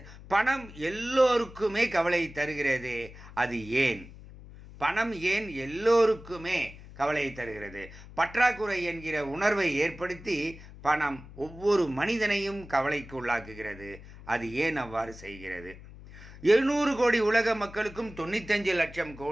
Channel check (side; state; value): left; noise; hum, 17 dB below the sound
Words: பணம் எல்லோருக்குமே கவலை தருகிறதே, அது ஏன்? பணம் ஏன் எல்லோருக்குமே கவலையை தருகிறது? பற்றாக்குறை என்கிற உணர்வை ஏற்படுத்தி பணம் ஒவ்வொரு மனிதனையும் கவலைக்கு உள்ளாக்குகிறது. அது ஏன் அவ்வாறு செய்கிறது? 700 கோடி உலக மக்களுக்கும் 95 லட்சம்